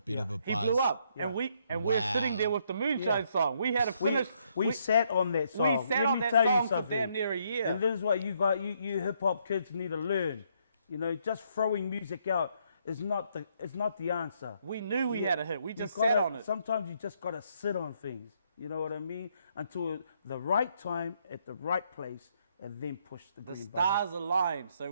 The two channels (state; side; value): inverted; both; correlation -0.72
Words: of a He buzz. blew up. Yeah. And we're Wow. sitting there with the Moonshine song. We had to finish. We sat on that song. We sat Let on me that tell you song for something. damn near a year. And this is what you hip hop kids need to learn. You know, just throwing music out is not the answer. We knew we had a hit. We just You gotta- sat on it. Sometimes you just got to sit on things. You know what I mean? Until the right time at the right place, and then push the The green button. stars aligned. So